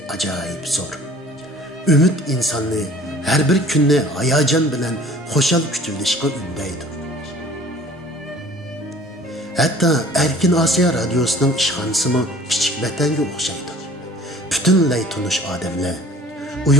ajoyib zo'r. Ümid insonni har bir kunni hayajon bilan xo'shal kutilishga undaydi. Hatto Erkin Asiya radiosining ishxonasimi kichik vatanga o'xshaydi. Butunlay tunish odamlar,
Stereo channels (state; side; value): normal; both; correlation 0.50